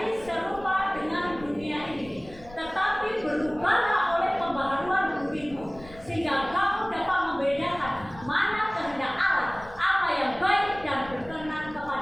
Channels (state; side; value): noise; left; rumble, 19 dB below the sound